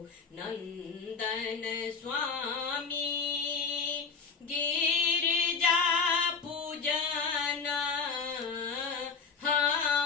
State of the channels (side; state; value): right; quieter; 5.4 dB